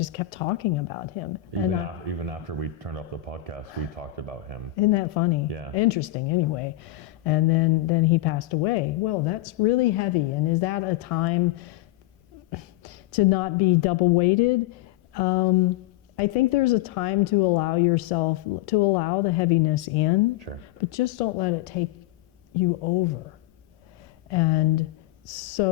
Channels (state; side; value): quieter; right; 15.9 dB